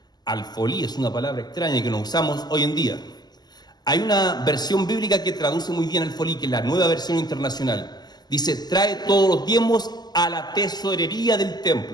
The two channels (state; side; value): late; right; 0.20 ms